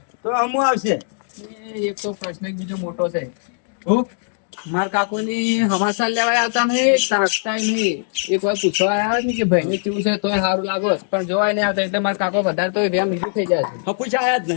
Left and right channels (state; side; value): silent; right; digital silence